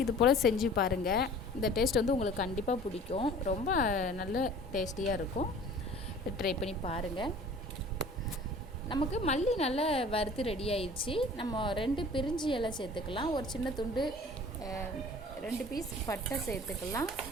இது போல் செஞ்சு பாருங்கள். இந்த டேஸ்ட் உங்களுக்கு கண்டிப்பாக பிடிக்கும். ரொம்ப நல்ல டேஸ்டியாக இருக்கும். ட்ரை பண்ணி பாருங்கள். நமக்கு மல்லி நல்லா வறுத்து ரெடி ஆயிடுச்சு. நம்ம 2 பிரிஞ்சி இலை சேர்த்துக்கலாம். ஒரு சின்ன துண்டு 2 பீஸ் பட்டை சேர்த்துக்கலாம்.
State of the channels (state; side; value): normal; both; correlation 0.46